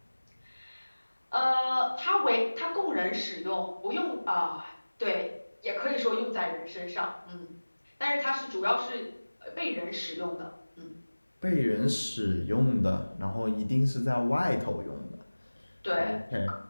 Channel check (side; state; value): both; inverted; correlation -1.00